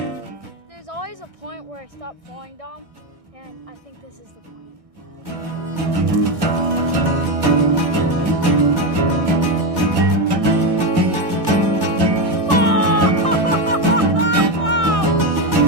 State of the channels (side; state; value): left; late; 1.6 ms